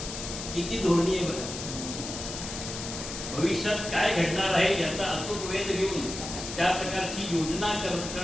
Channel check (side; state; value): left; noise; hiss, 7 dB below the sound